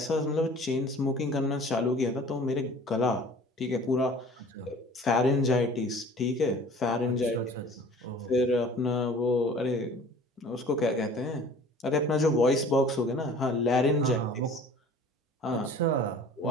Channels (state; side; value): normal; both; correlation 0.47